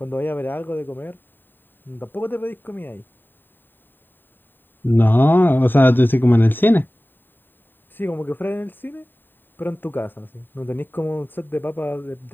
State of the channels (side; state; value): right; late; 0.093 ms